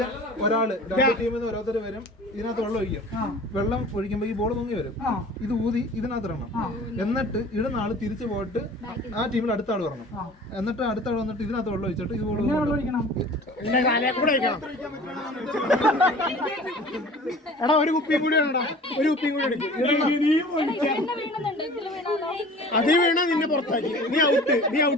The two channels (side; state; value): both; normal; correlation 0.44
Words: ഒരാള് രണ്ട് ടീമിൽ നിന്ന് ഓരോരുത്തർ വരും, ഇതിനകത്ത് വെള്ളം ഒഴിക്കും. വെള്ളം ഒഴിക്കുമ്പോ ഈ ബോൾ പൊങ്ങി വരും, ഇത് ഊതി ഇതിനകത്ത് ഇടണം. എന്നിട്ട് ഇടുന്ന ആള് തിരിച്ചു പോയിട്ട് ആ ടീമിൽ അടുത്ത ആള് വരണം. എന്നിട്ട് അടുത്ത ആൾ വന്നിട്ട് ഇതിനകത്ത് വെള്ളം ഒഴിച്ചിട്ട് ഇത് ബോൾ എടാ ഒരു കുപ്പിയും കൂടി വേണടാ, ഒരു കുപ്പിയും കൂടി എടുക്കും. അതേ വീണ നിന്നെ പുറത്താക്കി. നീ